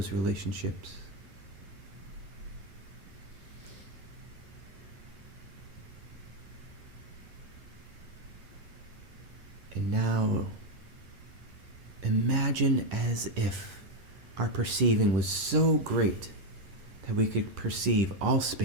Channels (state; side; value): late; left; 9.4 ms